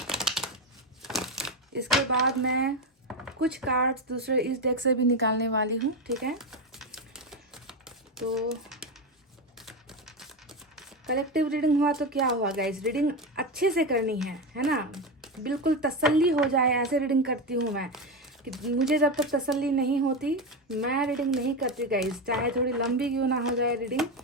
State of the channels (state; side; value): normal; both; correlation 0.14